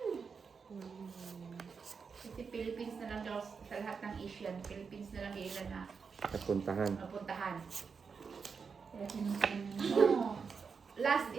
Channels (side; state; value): left; quieter; 5.6 dB